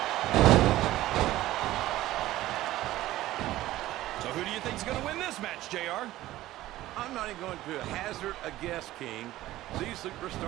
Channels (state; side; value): quieter; left; 15.6 dB